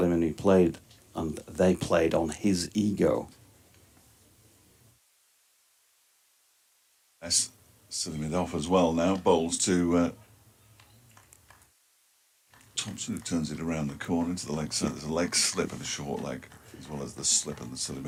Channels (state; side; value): identical; both; correlation 1.00